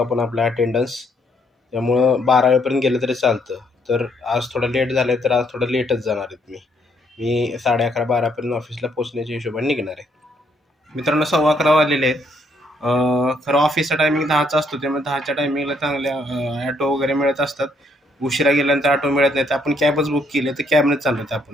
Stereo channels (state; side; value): normal; both; correlation 0.70